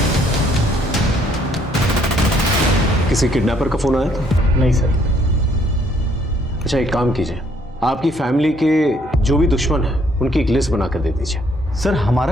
किसी किडनैपर का फोन आया था? नहीं सर। अच्छा, एक काम कीजिए, आपकी फैमिली के जो भी दुश्मन है उनकी एक लिस्ट बना कर दे दीजिए। सर,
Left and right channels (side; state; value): both; normal; correlation 0.66